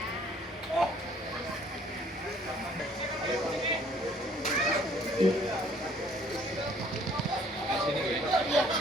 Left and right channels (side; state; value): both; normal; correlation 0.59